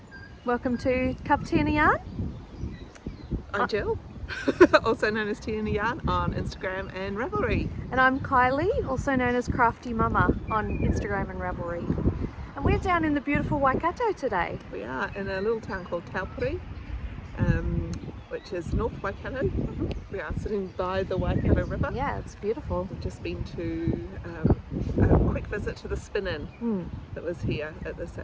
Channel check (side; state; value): both; identical; correlation 1.00